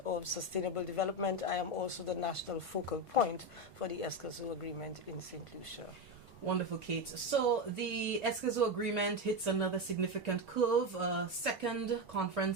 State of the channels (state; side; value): normal; both; correlation 0.13